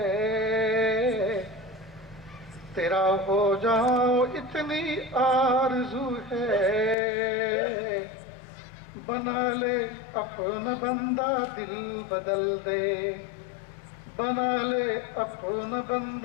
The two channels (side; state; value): right; drops out; at 7.0 s